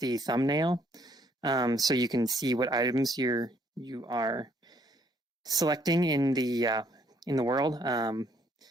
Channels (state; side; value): normal; both; correlation 0.67